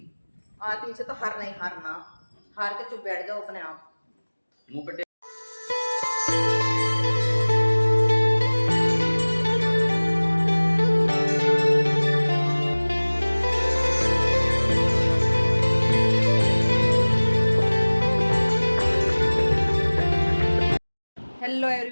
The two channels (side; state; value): both; inverted; correlation -1.00